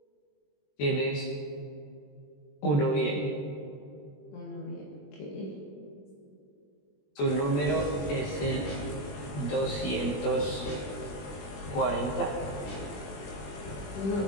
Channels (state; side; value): late; right; 21 ms